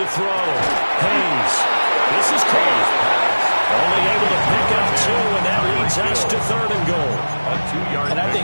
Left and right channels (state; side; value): inverted; both; correlation -1.00